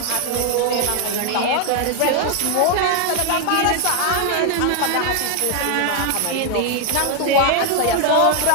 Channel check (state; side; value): different; both; correlation 0.00